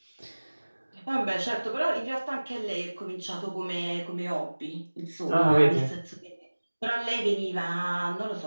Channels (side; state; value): both; inverted; correlation -1.00